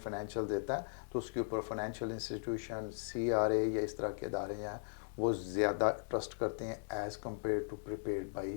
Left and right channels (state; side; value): silent; right; digital silence